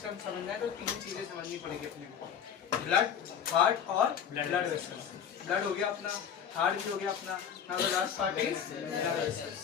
समझना है तो 3 चीजें समझनी पड़ेगी अपने को, ब्लड, हार्ट और ब्लड वेसल्स। ब्लड हो गया अपना, हार्ट भी हो गया अपना, now the last part is blood vessels.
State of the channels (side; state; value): right; quieter; 8.1 dB